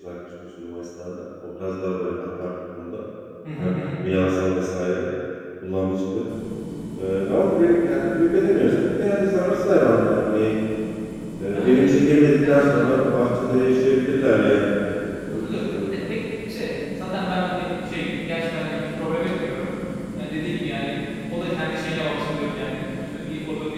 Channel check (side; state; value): both; identical; correlation 1.00